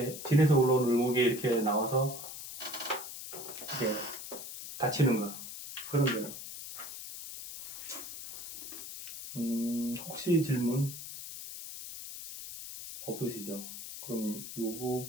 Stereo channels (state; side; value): noise; left; hiss, 10 dB below the sound